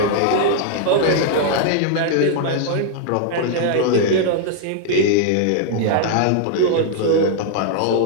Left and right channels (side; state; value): both; different; correlation -0.01